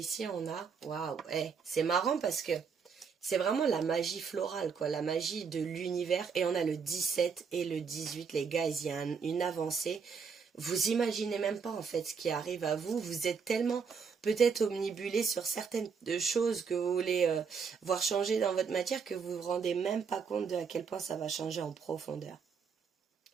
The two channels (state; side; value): quieter; left; 5.9 dB